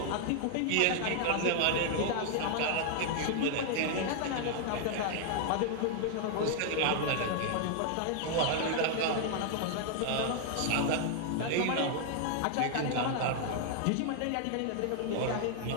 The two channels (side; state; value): both; different; correlation 0.00